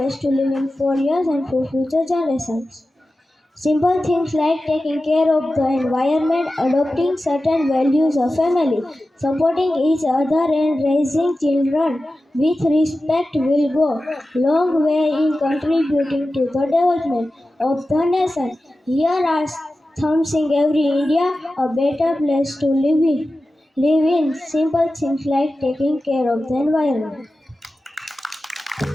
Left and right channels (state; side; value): normal; both; correlation 0.94